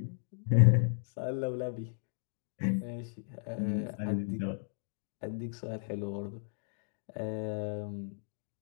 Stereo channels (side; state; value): right; silent; digital silence